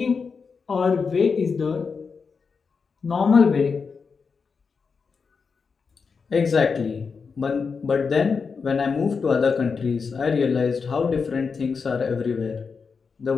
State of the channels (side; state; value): right; quieter; 5.3 dB